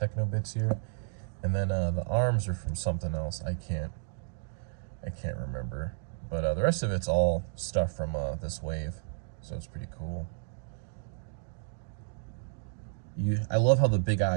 bits here. And then the arms are from something else. I can't remember. But the rest of it's all stuff from this wave, so it's pretty cool. I love how the big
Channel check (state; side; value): silent; left; digital silence